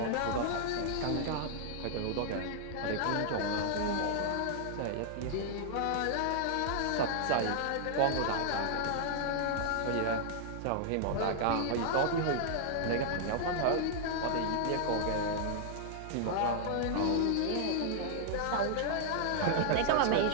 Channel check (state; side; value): different; both; correlation -0.01